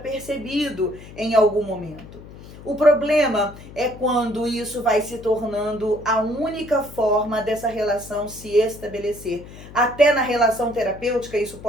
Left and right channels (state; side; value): noise; left; hum, 17 dB below the sound